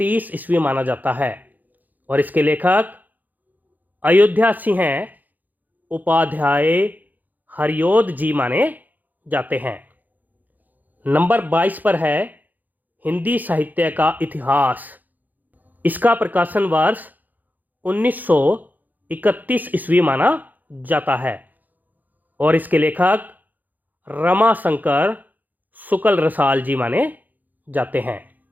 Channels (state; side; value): late; left; 0.083 ms